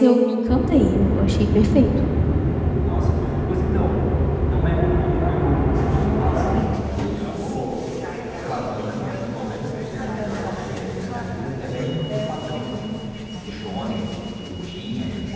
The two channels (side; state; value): both; identical; correlation 1.00